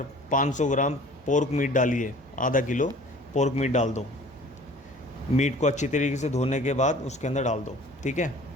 500 ग्राम पोर्क मीट डालिए। आधा किलो पोर्क मीट डाल दो। मीट को अच्छी तरीके से धोने के बाद उसके अंदर डाल दो, ठीक है।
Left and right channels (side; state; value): both; normal; correlation 0.48